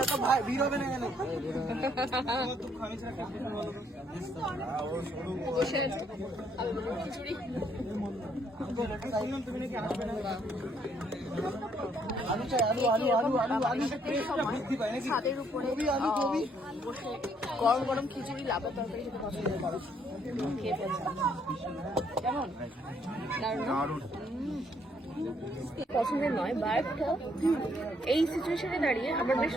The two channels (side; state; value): both; normal; correlation 0.69